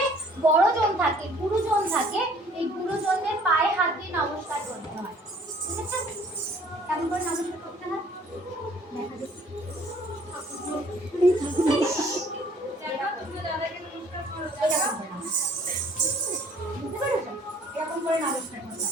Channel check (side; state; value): both; normal; correlation 0.56